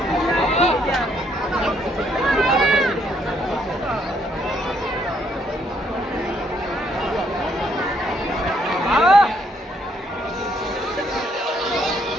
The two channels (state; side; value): normal; both; correlation 0.70